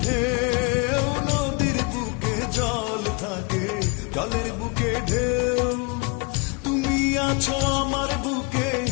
ঢেউ, নদীর বুকে জল থাকে, জলের বুকে ঢেউ। তুমি আছো আমার বুকে,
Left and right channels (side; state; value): right; quieter; 30.1 dB